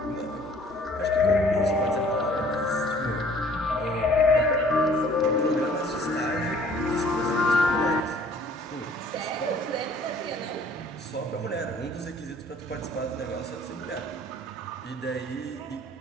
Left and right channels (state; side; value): normal; both; correlation 0.55